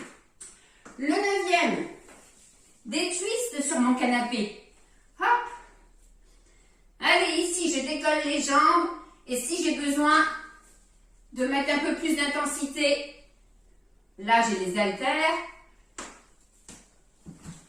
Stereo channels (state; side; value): identical; both; correlation 1.00